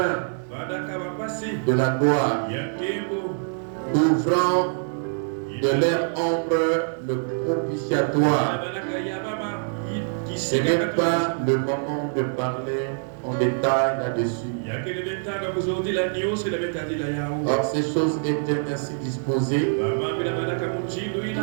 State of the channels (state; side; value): silent; left; digital silence